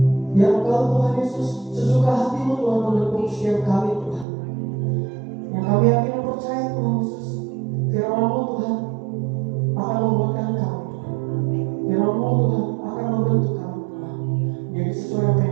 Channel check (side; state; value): left; drops out; at 4.2 s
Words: Biar Engkau Tuhan Yesus sesuka hati-Mu Tuhan menepuk setiap kami Tuhan. Yang kami yakin dan percaya Tuhan Yesus, firman-Mu Tuhan akan membuatkan kami Tuhan. Firman-Mu Tuhan akan membentuk kami Tuhan. Jadi sesuai apa